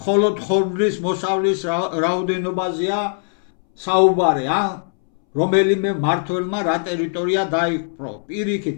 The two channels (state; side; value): silent; right; 64 dB below the other